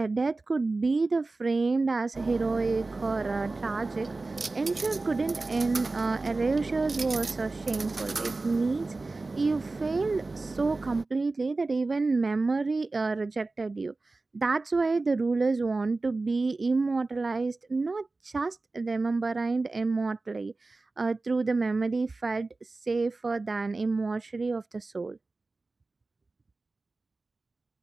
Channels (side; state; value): left; quieter; 3.4 dB